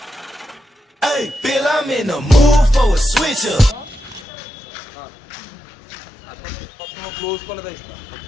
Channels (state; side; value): drops out; right; at 4.2 s